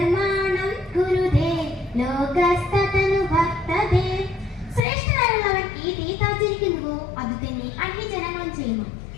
കുരുതേ ലോകസ്തതനു ഭക്തദേ. ശ്രേഷ്ഠനായുള്ളവൻ ഈ രീതി ആചരിക്കുന്നുവോ അത് തന്നെ അന്യജനങ്ങളും ചെയ്യുന്നു.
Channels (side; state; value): right; drops out; at 4.8 s